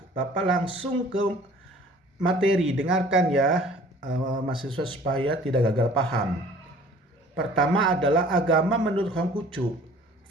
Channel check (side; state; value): both; normal; correlation 0.50